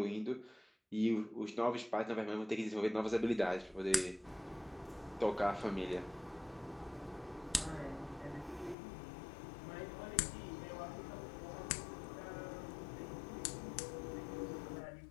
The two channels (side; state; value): right; drops out; at 8.8 s